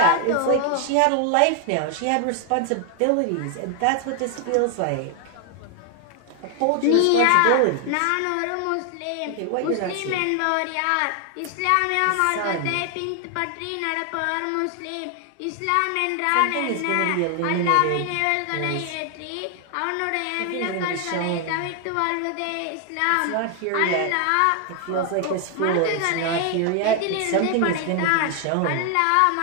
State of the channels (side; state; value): both; different; correlation 0.00